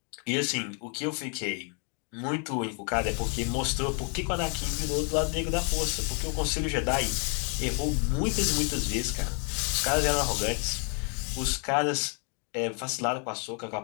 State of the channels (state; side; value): quieter; right; 38.7 dB